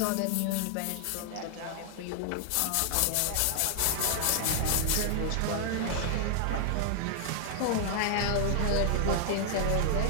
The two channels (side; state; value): both; different; correlation 0.00